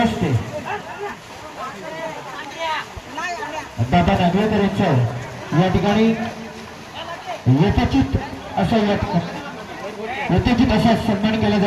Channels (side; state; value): both; identical; correlation 1.00